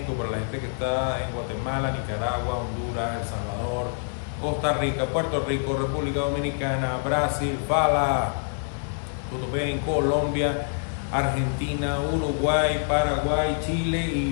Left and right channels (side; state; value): right; silent; 61 dB below the other